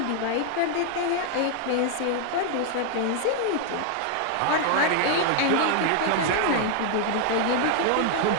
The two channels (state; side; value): different; both; correlation 0.00